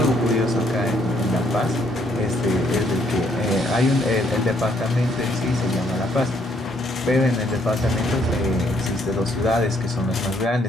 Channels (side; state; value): both; normal; correlation 0.69